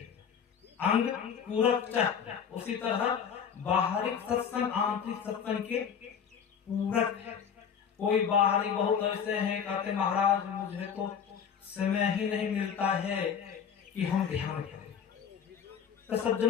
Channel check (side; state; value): right; quieter; 7.4 dB